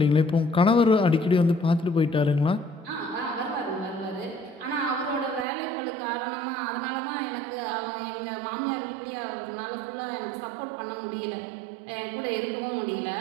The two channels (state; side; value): drops out; left; at 5.5 s